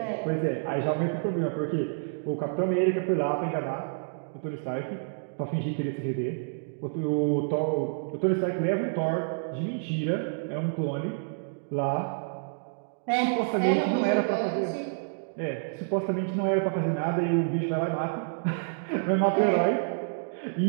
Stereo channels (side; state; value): left; silent; digital silence